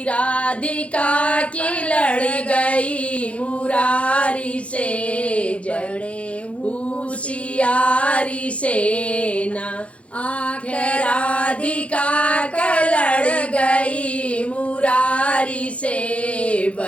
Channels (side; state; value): right; late; 0.062 ms